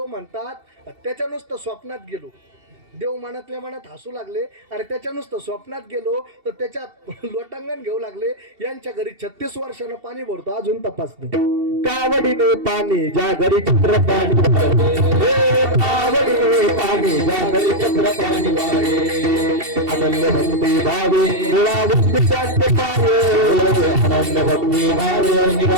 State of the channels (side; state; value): left; late; 2.7 ms